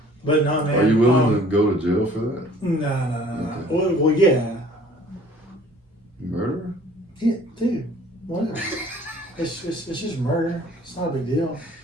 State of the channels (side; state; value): both; normal; correlation 0.53